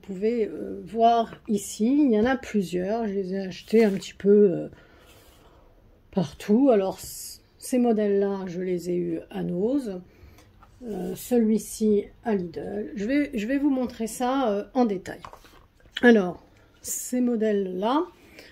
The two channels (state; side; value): identical; both; correlation 1.00